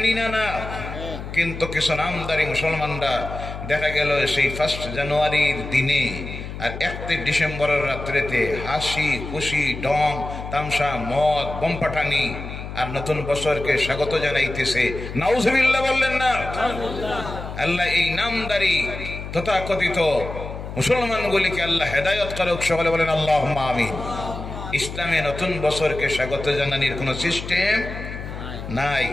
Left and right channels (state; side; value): noise; left; hum, 9 dB below the sound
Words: না? না। কিন্তু কিছু নামদারি মুসলমানরা দেখা গেল সেই 1 জানুয়ারির দিনে আর 31 ডিসেম্বরের রাত্রেতে হাসি খুশি ঢং তামসা মদ বোম পাঠানি আর নতুন বছরকে স্বাগত জানাইতেছে। নাউযুবিল্লাহ বললেন না? আল্লাহ এই নামদারি তথাকথিত মুসলমানগুলিকে আল্লাহ হেদায়েত করুক, সকলে বলেন আল্লাহুম্মা আমিন। ইসলামে নতুন বছরকে স্বাগত জানানোর কোনো সিস্টেম নাই।